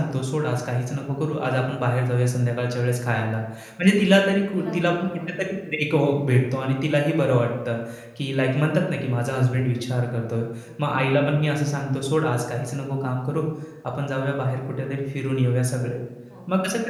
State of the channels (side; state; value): both; identical; correlation 1.00